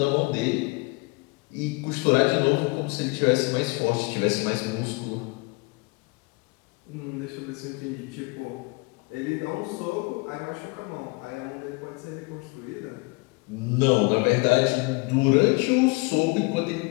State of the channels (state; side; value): quieter; right; 27.9 dB